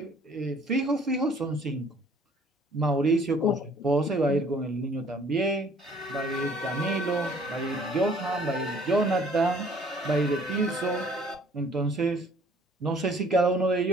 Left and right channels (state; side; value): normal; both; correlation 0.57